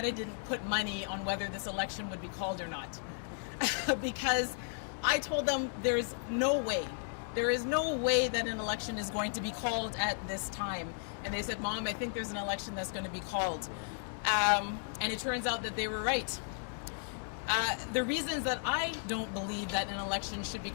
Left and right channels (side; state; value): right; silent; 55 dB below the other